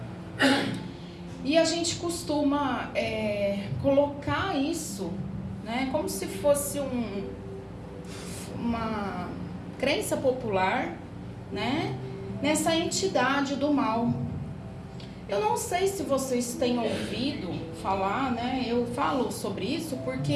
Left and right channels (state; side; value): identical; both; correlation 1.00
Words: E a gente costuma colocar isso, né, como se fosse uma crença popular, né, nessa entidade do mal. Eu não sei se vocês têm ouvido falar, né, eu falo sobre isso